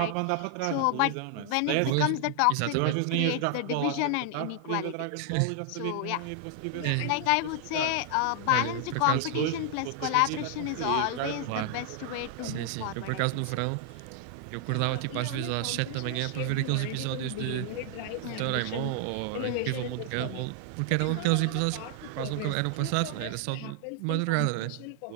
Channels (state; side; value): different; both; correlation 0.00